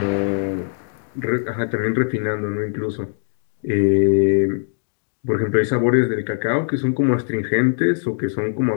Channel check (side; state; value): right; silent; digital silence